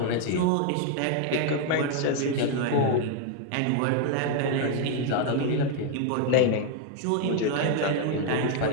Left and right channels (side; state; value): both; different; correlation 0.00